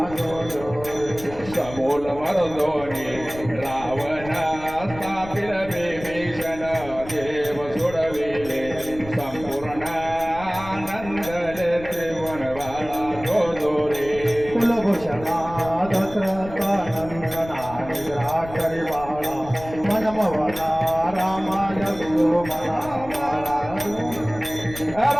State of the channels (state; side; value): noise; left; rumble, 15 dB below the sound